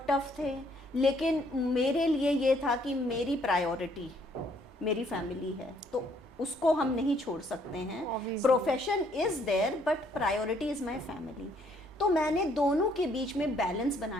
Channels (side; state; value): both; normal; correlation 0.66